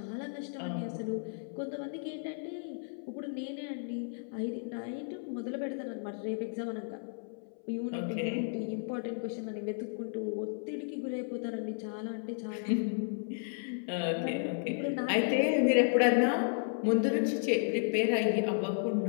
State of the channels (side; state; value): right; silent; 55 dB below the other